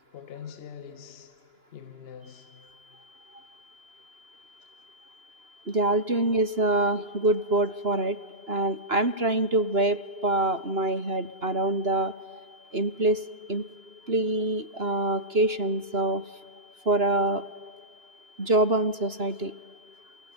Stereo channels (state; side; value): late; left; 2.9 ms